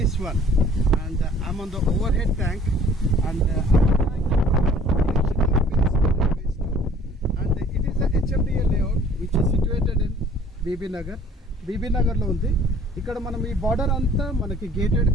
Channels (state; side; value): normal; both; correlation 0.54